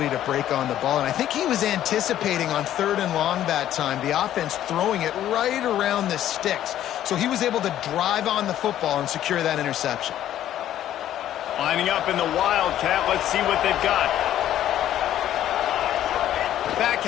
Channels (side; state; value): right; quieter; 12.0 dB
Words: to break on the ball. And I think he was anticipating on third and long that time, the offense throwing it right around the sticks. So he was able to drive on the football and secure that interception. Lining up in the Wildcat. Let's see what they've got. Back